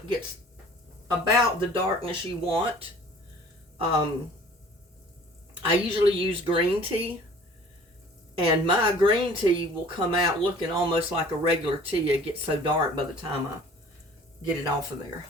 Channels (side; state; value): both; normal; correlation 0.50